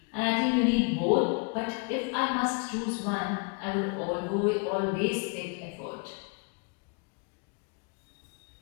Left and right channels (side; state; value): right; quieter; 33.8 dB